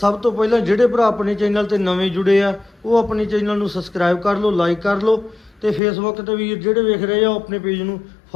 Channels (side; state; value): right; drops out; at 5.8 s